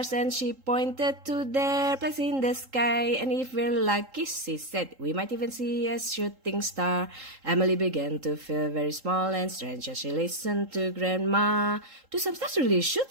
and she pointed to their place in the sky. And if we're lucky, she said, we might even see a shooting star. Emily began to feel very small and strange as she listened to Grandma. Do some stars really shoot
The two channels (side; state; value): left; late; 3.8 ms